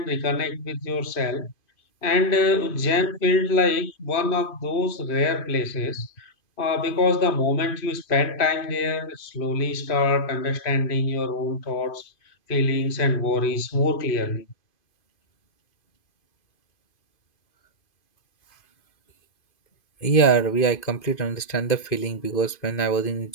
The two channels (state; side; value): late; right; 2.5 ms